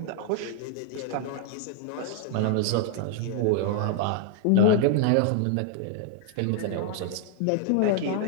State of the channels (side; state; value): both; different; correlation 0.00